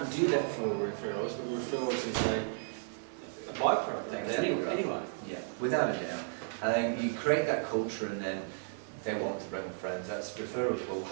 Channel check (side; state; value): left; silent; 55 dB below the other